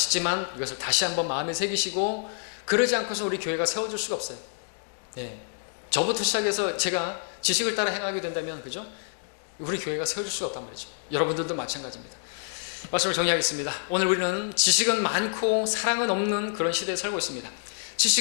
이것을 다시 한번 마음에 새기시고, 그러지 않고서 우리 교회가 세워질 수가 없어요. 네. 저부터 시작해서 제가 지식을 따라 행하게 된다면, 그죠? 우리 교회가 세워질 수가 없단 말이죠. 여러분들도 마찬가지입니다. 말씀을 정리하겠습니다. 오늘 우리는 지식은 많고 사랑은 없는 그런 시대에 살고 있습니다.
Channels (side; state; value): right; silent; digital silence